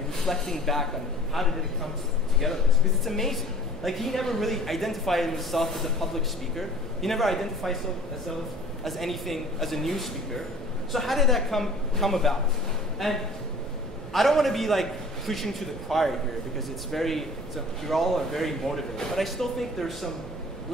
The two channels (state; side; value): normal; both; correlation 0.46